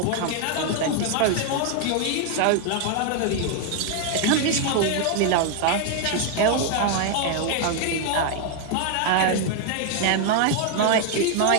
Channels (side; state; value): both; different; correlation 0.00